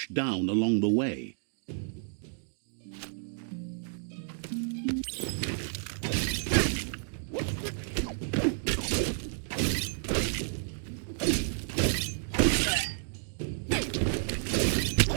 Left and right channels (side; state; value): left; silent; digital silence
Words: down along the way.